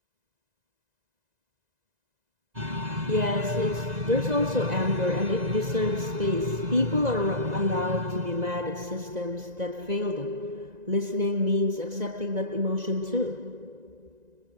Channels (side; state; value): left; late; 1.9 ms